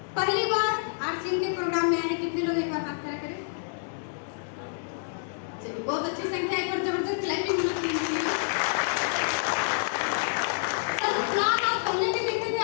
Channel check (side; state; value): right; silent; digital silence